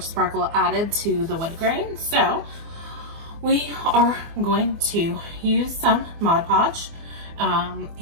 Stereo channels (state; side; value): late; left; 24 ms